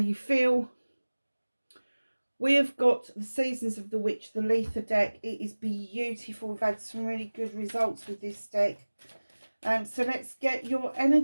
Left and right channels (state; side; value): inverted; both; correlation -1.00